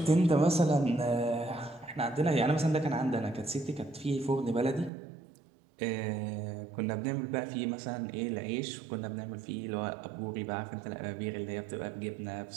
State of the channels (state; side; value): drops out; left; at 4.9 s